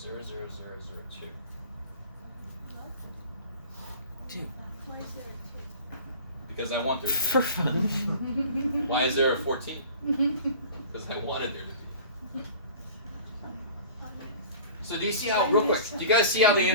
2. Because I want there to be. For fun. Why is there a 14? Because I wanted there to be. So do you see how, real quick, do you guys see how the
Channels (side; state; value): both; inverted; correlation -0.42